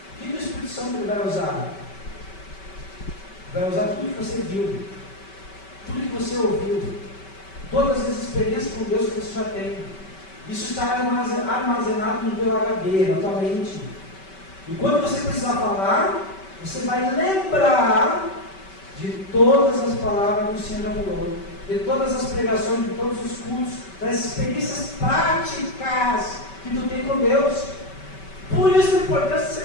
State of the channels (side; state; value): right; late; 5.2 ms